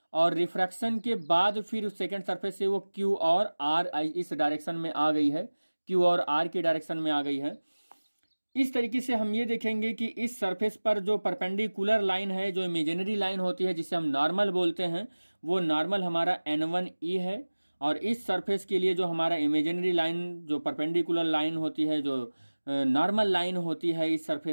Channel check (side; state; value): both; inverted; correlation -1.00